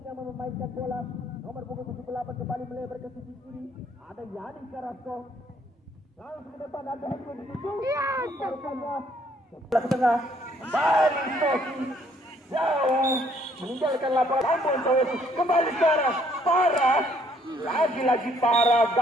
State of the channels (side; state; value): both; normal; correlation 0.65